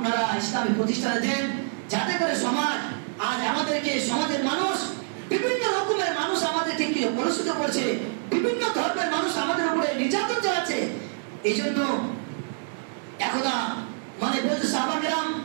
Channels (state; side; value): silent; left; digital silence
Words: ইসলামী প্রতিষ্ঠানে দেন, যাতে করে সমাজ আজ আমাদেরকে সমাজের মানুষ বিভিন্ন রকমের মানুষ আমাদেরকে কি কলুষিত করছে, বিভিন্ন ধর্মের মানুষ আমাদের উপরে নির্যাতন চালাচ্ছে। এই জন্য একদা মানে বলছে সাহাবাকেরাম,